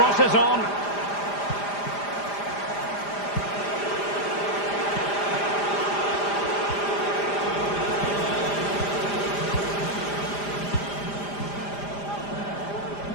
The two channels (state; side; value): late; right; 5.0 ms